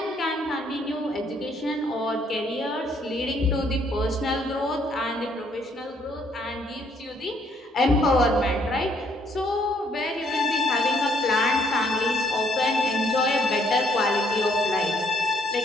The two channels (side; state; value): both; normal; correlation 0.68